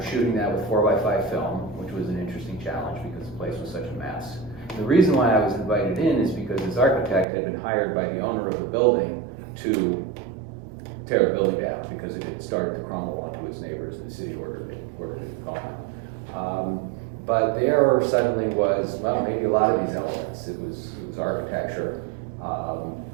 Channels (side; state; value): left; drops out; at 7.2 s